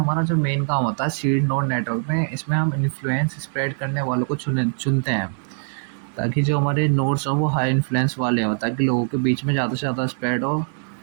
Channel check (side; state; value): left; silent; digital silence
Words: जो मेन काम होता है सीड नोड नेटवर्क में, इसमें हम इन्फ्लुएंस स्प्रेड करने वालों को चुनते हैं, ताकि जो हमारे नोड्स हों वो हाई इन्फ्लुएंस वाले हों, ताकि लोगों के बीच में ज़्यादा से ज़्यादा स्प्रेड हो।